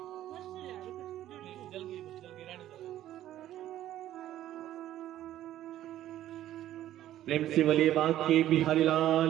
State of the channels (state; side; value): quieter; left; 12.8 dB